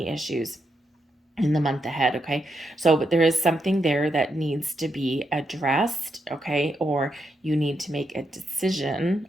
issues in the month ahead. Okay. So, but there is something there that needs to be addressed. Okay. Or you need to make a decision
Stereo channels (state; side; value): normal; both; correlation 0.82